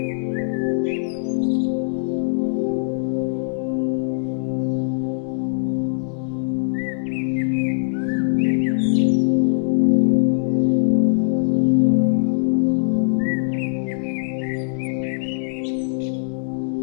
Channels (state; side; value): silent; right; digital silence